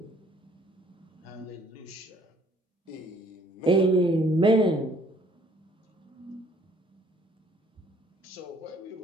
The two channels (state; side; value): normal; both; correlation 0.59